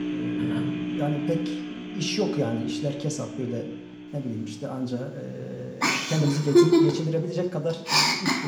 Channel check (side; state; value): both; identical; correlation 1.00